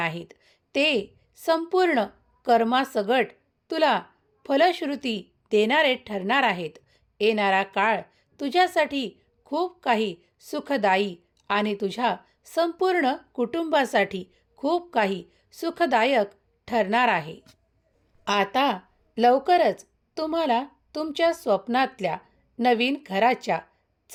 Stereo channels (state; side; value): identical; both; correlation 1.00